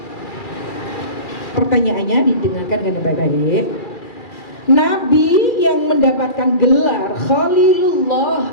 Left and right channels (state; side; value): late; right; 2.4 ms